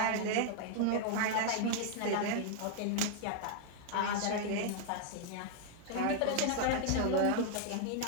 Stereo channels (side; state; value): both; different; correlation 0.00